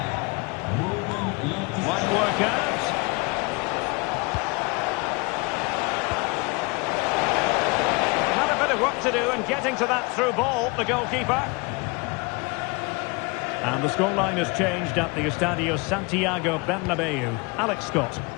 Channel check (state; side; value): quieter; right; 28.0 dB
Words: Might work out. Had a bit of work to do in getting to that through ball, the goalkeeper. And the scoreline has changed at the Estadio Santiago Bernabeu. Alex Scott.